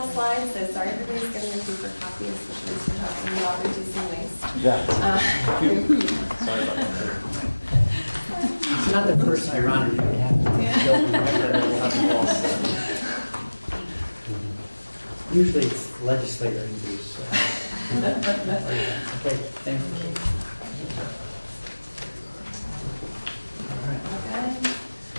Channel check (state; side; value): inverted; both; correlation -1.00